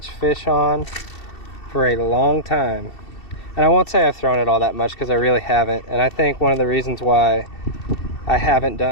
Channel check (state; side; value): late; right; 2.7 ms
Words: fish on for a long time. And I won't say I've thrown it all that much because I really haven't. And I think one of the reasons why I haven't